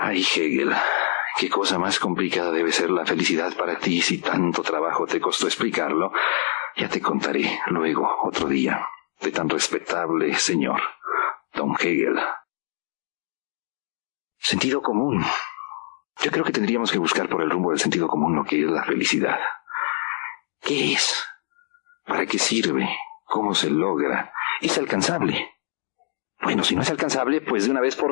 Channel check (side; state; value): right; silent; 56 dB below the other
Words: Hegel, qué cosa más complicada debe ser la felicidad para ti si tanto trabajo te costó explicarlo. Ya te contaré luego, otro día, de tan respetable señor, don Hegel. Sentido común. Yo creo que tendríamos que buscar por el rumbo del sentido común lo que es la felicidad. ¿Qué es? ¿Para qué sirve? ¿Cómo se logra? ¿Es alcanzable? Bueno, si no es alcanzable, pues de una vez